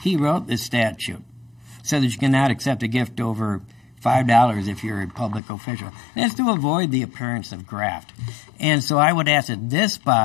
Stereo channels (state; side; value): drops out; right; at 5.4 s